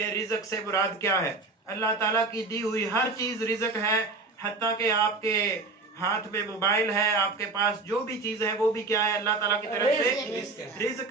رزق سے مراد کیا ہے۔ اللہ تعالیٰ کی دی ہوئی ہر چیز رزق ہے، حتیٰ کہ آپ کے ہاتھ میں موبائل ہے، آپ کے پاس جو بھی چیز ہے وہ بھی کیا ہے، اللہ تعالیٰ کی طرف سے رزق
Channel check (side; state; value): left; quieter; 3.6 dB